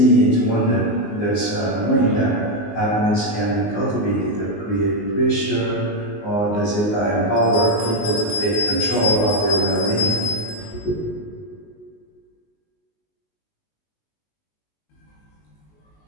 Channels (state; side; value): late; right; 19 ms